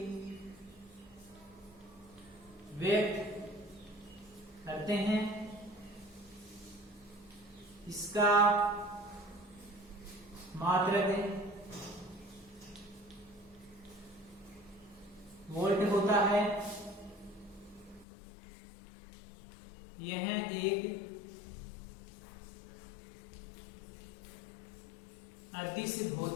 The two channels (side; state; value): right; drops out; at 18.1 s